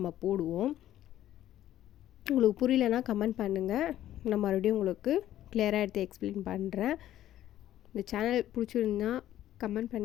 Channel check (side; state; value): right; quieter; 12.7 dB